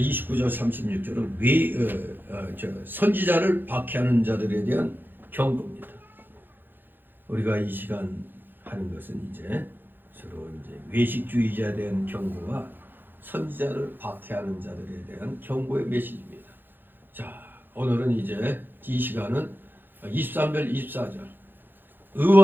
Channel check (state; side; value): late; left; 0.095 ms